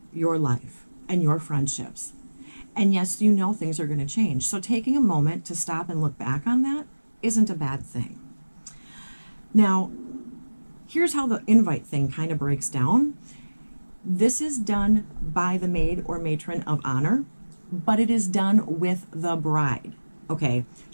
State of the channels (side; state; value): both; inverted; correlation -1.00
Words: your life and your friendships. And yes, you know things are going to change. So taking a moment to stop and look back on that isn't a bad thing. Now, here's how the invite thing kind of breaks down. This is done by the maid or matron of honor, but it is done with the bride. Okay,